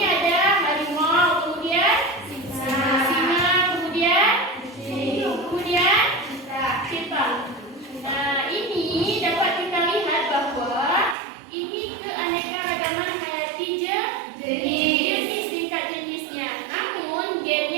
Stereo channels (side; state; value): left; drops out; at 11.2 s